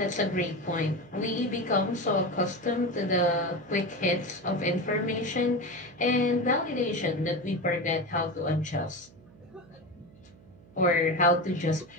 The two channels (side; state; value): right; noise; hum, 24 dB below the sound